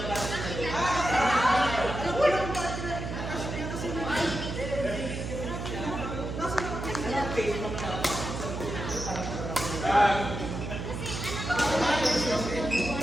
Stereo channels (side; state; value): right; noise; hum, 5 dB below the sound